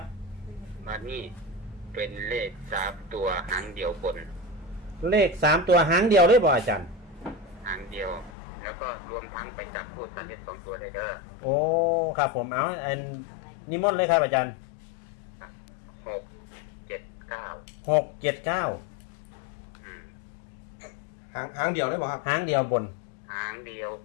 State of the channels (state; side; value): drops out; right; at 8.3 s